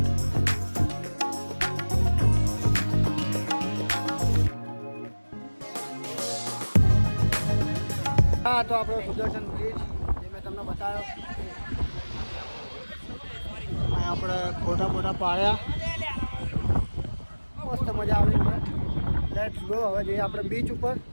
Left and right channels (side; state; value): both; inverted; correlation -1.00